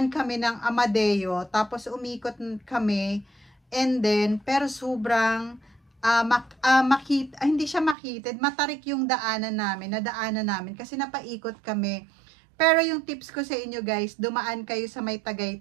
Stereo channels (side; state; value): left; drops out; at 8.0 s